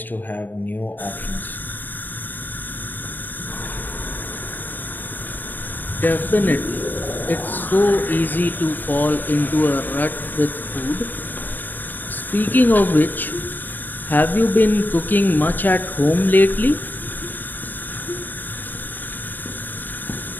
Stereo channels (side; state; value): right; late; 0.089 ms